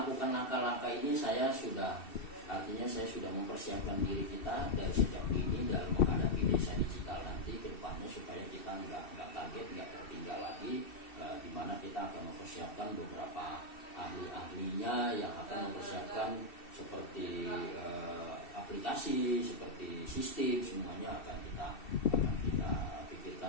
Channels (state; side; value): late; right; 2.7 ms